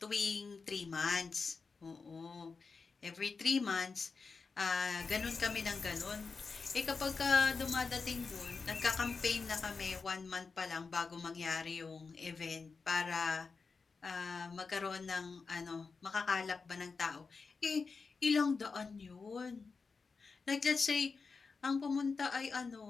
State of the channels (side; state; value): right; quieter; 4.7 dB